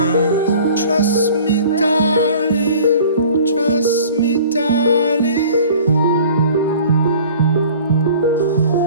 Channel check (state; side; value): inverted; both; correlation -0.47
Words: Trust me, darling, trust me, darling.